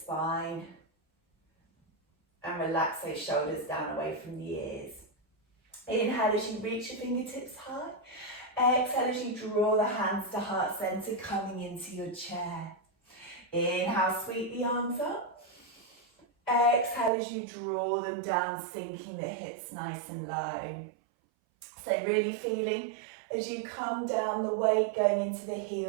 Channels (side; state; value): left; drops out; at 17.1 s